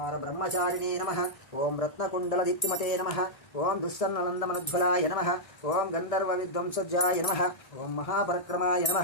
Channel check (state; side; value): late; right; 1.7 ms